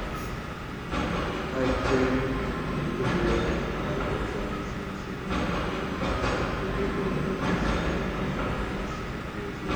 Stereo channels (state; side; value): identical; both; correlation 1.00